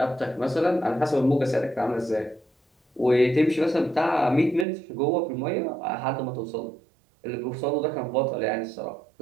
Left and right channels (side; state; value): left; drops out; at 4.7 s